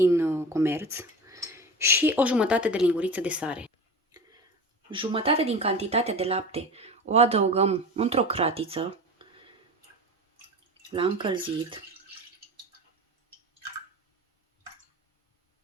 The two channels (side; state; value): both; normal; correlation 0.32